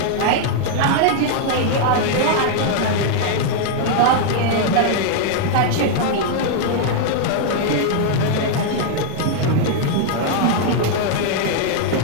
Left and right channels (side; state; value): both; different; correlation 0.00